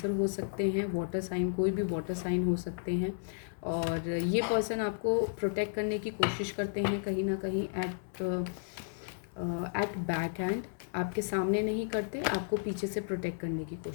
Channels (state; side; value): silent; right; 56 dB below the other